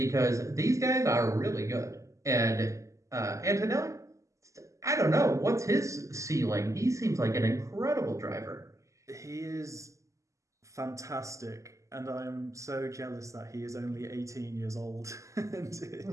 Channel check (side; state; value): left; late; 0.15 ms